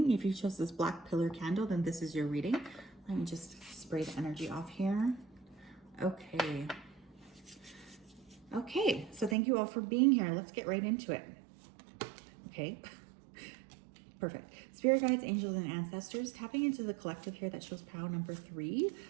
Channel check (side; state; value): left; drops out; at 9.3 s